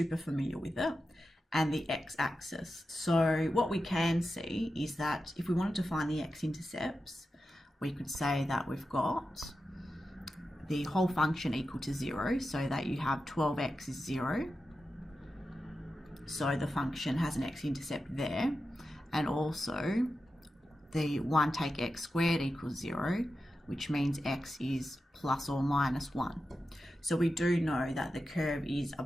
familiar with it, and the x-axis. So what we can see is that if we wanted to find the x-intercepts, we could say that we've got the whole function equal to 0, so that you have 12x is 0. So the function has an x-intercept there, and also the 1 take x squared equals 0, which means x is plus or minus 1. So we do know that the curve is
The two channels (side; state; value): both; normal; correlation 0.91